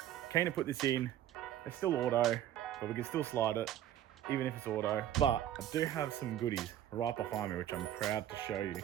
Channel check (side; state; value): left; quieter; 11.7 dB